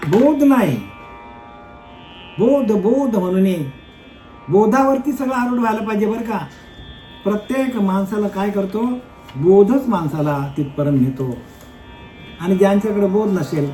बोध नाही. बोध बोध म्हणून बोधावरती सगळं आरूढ व्हायला पाहिजे बरं का. प्रत्येक माणसाला काय करतो? बोधच माणसाला तिथपर्यंत नेतो. आणि ज्यांच्याकडे बोध नसेल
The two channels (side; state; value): both; identical; correlation 1.00